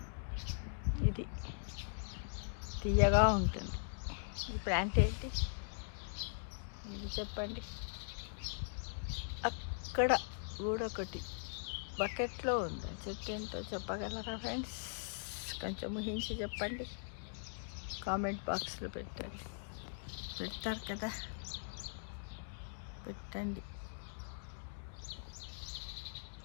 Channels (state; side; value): silent; right; digital silence